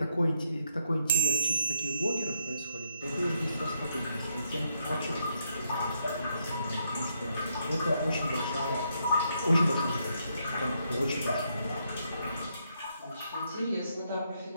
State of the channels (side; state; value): both; inverted; correlation -0.75